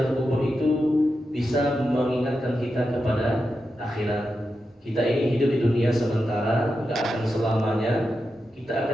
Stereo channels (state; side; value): normal; both; correlation 0.89